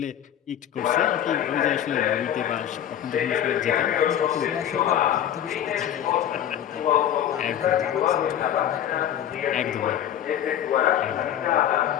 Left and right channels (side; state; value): right; quieter; 10.5 dB